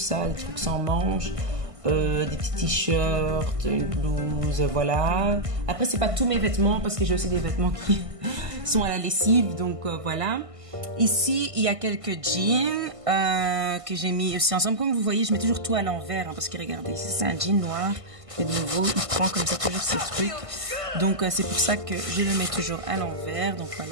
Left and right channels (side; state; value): left; late; 1.5 ms